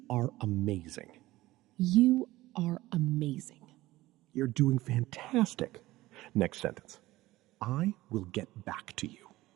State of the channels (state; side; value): quieter; left; 17.6 dB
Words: are amazing. You are amazing. You're doing fantastic. Next sentence. I will get back to you.